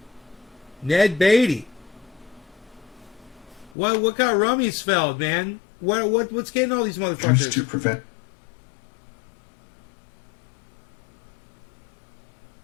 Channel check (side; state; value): right; drops out; at 3.7 s